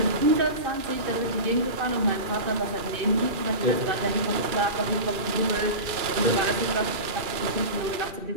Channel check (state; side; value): late; left; 2.4 ms